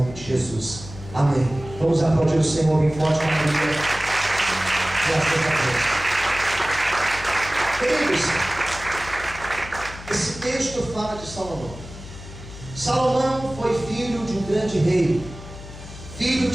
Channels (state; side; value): noise; left; hum, 14 dB below the sound